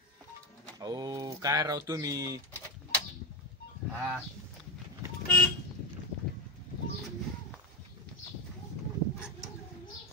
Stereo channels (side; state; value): both; normal; correlation 0.13